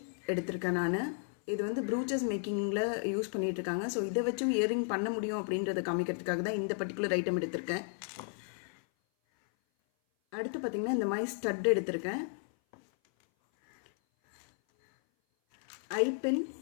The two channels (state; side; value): silent; right; 55 dB below the other